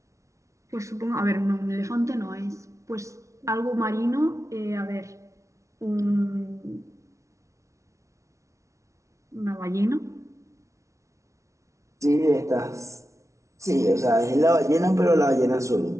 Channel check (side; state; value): left; late; 0.14 ms